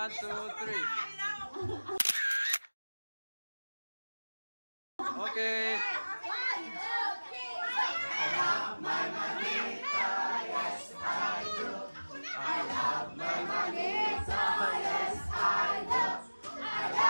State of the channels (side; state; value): both; inverted; correlation -1.00